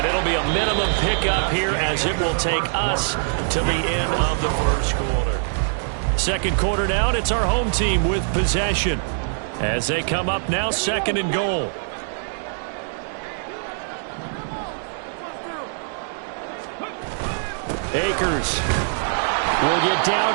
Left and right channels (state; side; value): silent; left; 63 dB below the other